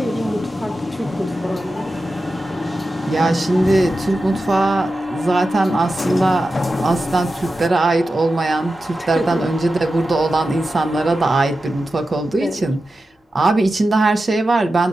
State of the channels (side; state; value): both; normal; correlation 0.92